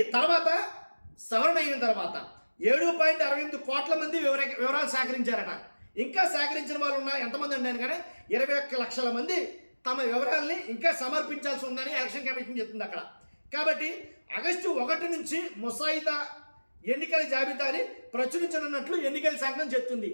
తర్వాత సవరణ అయిన తర్వాత 7.68 కోట్ల మంది వివరాలు సేకరించారట. ఇంకా సేకరించిన వాళ్ళు ఎంతమంది ఉన్నారు కానీ 21 లక్షల మంది తమ వివరాలని ఇంకా సమర్పించాల్సి ఉందని ఎలక్షన్ కమిషన్ చెప్తుంది అక్కడ. కాబట్టి ఆగస్టు 1 నుంచి ముసాయిదా ఎన్నికల జాబితాని ప్రచురించనున్నట్లు ఎన్నికల సంఘం చెప్తుంది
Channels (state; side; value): inverted; both; correlation -1.00